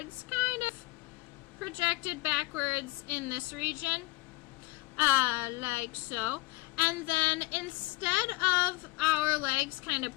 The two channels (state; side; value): quieter; right; 21.9 dB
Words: kind of projected backwards in this region. Like so. And then instead of our legs kind of